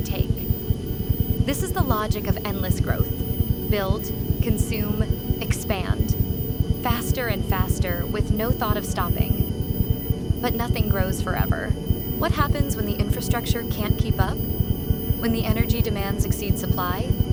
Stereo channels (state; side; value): identical; both; correlation 1.00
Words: take. This is the logic of endless growth. Build, consume, expand. Faster and faster, with no thought of stopping. But nothing grows forever. What happens when the infrastructure can't keep up? When the energy demands exceed supply?